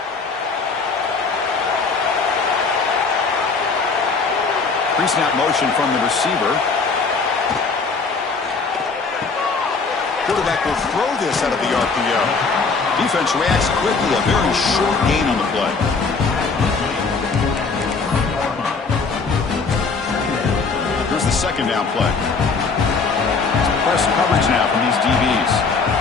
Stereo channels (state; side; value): quieter; right; 4.5 dB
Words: Pre-snap motion from the receiver. Quarterback will throw this out of the RPO. Defense reacts quickly. A very short gain on the play. Here's the second down play. Press coverage now from these DBs.